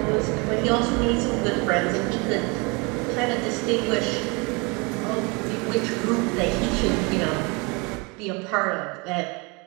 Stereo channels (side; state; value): left; quieter; 29.1 dB